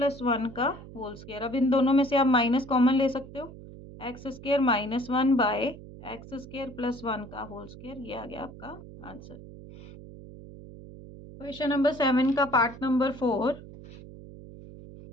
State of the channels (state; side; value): noise; right; hum, 16 dB below the sound